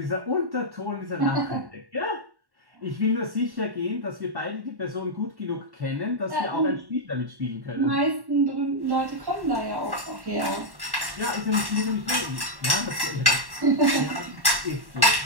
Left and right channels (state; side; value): late; left; 1.1 ms